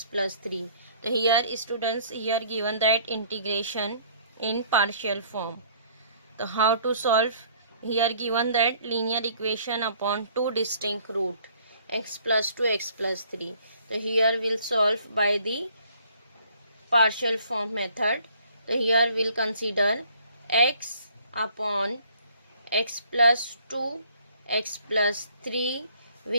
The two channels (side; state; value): both; inverted; correlation -0.59